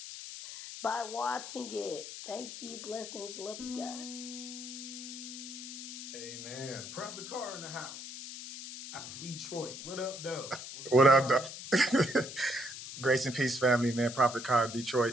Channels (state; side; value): noise; left; hiss, 10 dB below the sound